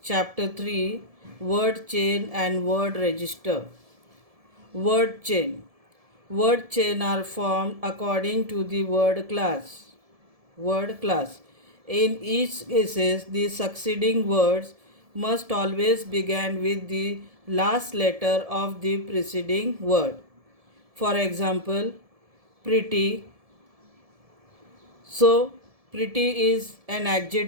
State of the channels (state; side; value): late; left; 1.7 ms